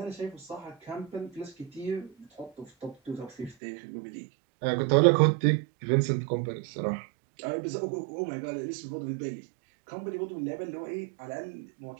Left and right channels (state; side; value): drops out; left; at 3.6 s